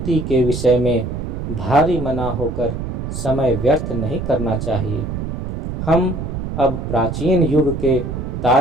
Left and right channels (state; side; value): noise; right; rumble, 5 dB below the sound